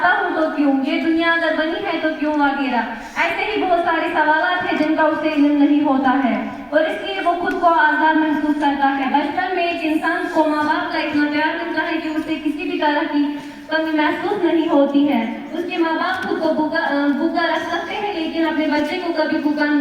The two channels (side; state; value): both; identical; correlation 1.00